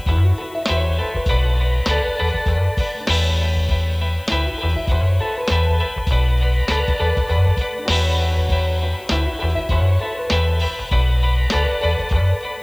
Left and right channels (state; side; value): noise; left; hiss, 25 dB below the sound